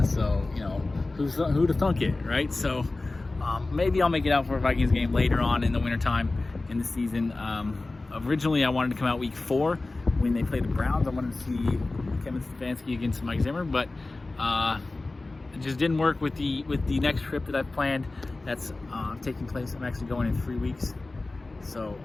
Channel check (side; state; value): right; quieter; 3.2 dB